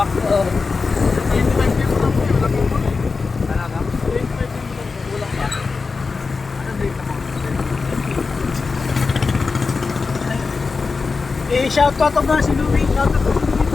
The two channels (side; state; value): right; quieter; 4.4 dB